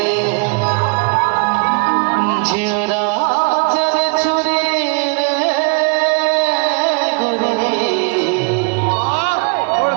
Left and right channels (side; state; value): left; quieter; 36.6 dB